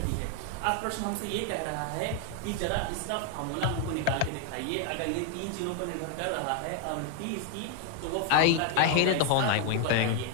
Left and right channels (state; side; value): different; both; correlation 0.00